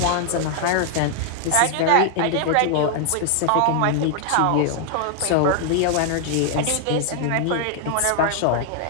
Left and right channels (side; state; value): both; different; correlation 0.00